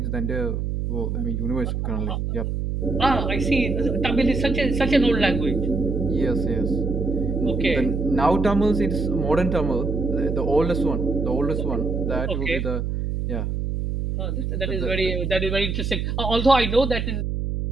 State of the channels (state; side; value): noise; right; hum, 1 dB below the sound